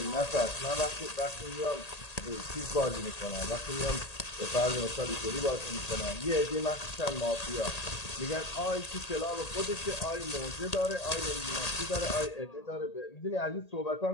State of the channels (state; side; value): late; right; 1.8 ms